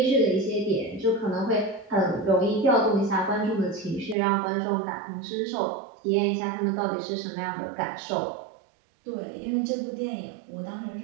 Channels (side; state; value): left; drops out; at 4.2 s